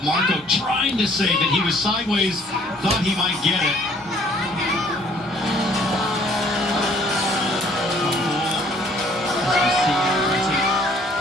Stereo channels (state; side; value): normal; both; correlation 0.59